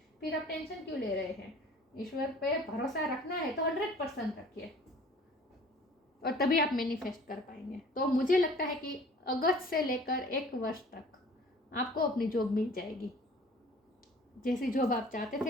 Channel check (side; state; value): both; normal; correlation 0.49